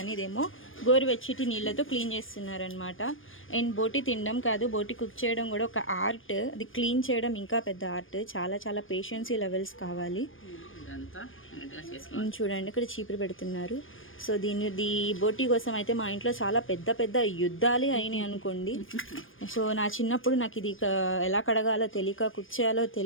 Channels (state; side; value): late; right; 0.59 ms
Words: ఇదేమో గోరువెచ్చటి నీళ్ళతో క్లీన్ చేస్తున్నారనమాట. అండ్ బోటి తినడం కాదు, బోటి కుక్ చేయడం కూడా ఒక ఆర్ట్. అది క్లీన్ చేయడం ఇంకా పెద్ద ఆర్ట్. చాలా చాలా పేషెన్సీ లెవెల్స్ కావాలి. చూడండి ఇక్కడ చీపురు పెడుతున్నారు. సో ఈ బోటి కోసం అయితే మా ఇంట్లో చాలా పెద్ద పెద్ద యుద్ధాలే అయినాయి అనుకోండి. సో నా చిన్నప్పుడు నాకు ఇది ఎలా కడగాలో తెలియక, కుక్ చేయాలో